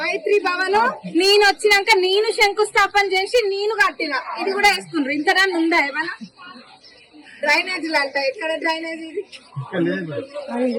భవన్. నేను వచ్చినాక నేను శంకుస్థాపన చేసి నేను కట్టిన. ఇది కూడా వేసుకున్నారు. ఇంతనా ఉందా ఏమన్నా? డ్రైనేజీలు అంట. ఎక్కడ డ్రైనేజీ?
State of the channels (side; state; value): both; identical; correlation 1.00